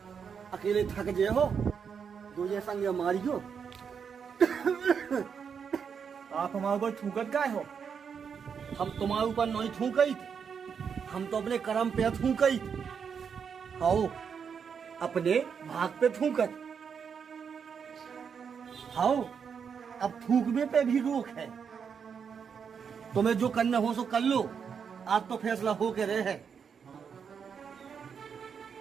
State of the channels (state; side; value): quieter; left; 6.7 dB